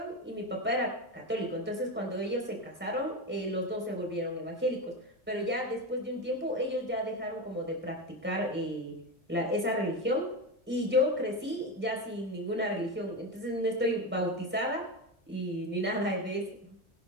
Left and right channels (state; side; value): normal; both; correlation 0.18